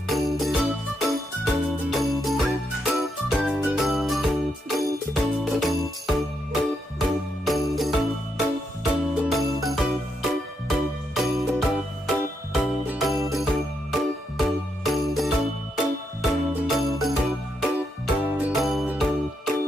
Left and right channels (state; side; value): normal; both; correlation 0.80